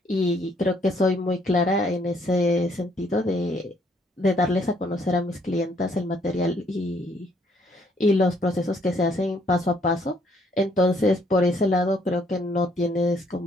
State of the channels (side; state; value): both; normal; correlation 0.67